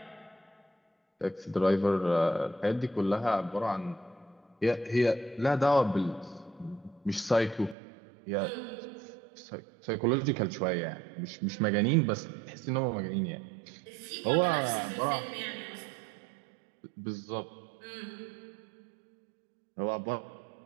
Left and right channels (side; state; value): left; drops out; at 7.8 s